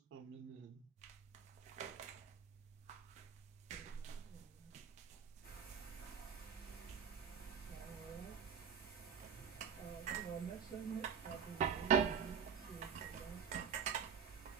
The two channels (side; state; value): left; quieter; 7.4 dB